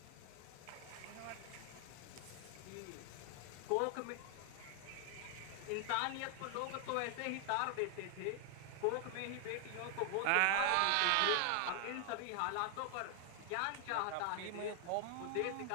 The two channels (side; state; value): both; different; correlation 0.00